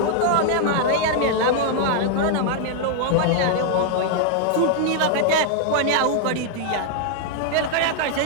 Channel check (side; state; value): both; different; correlation 0.00